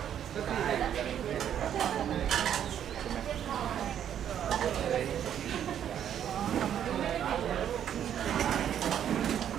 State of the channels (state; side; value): quieter; left; 9.7 dB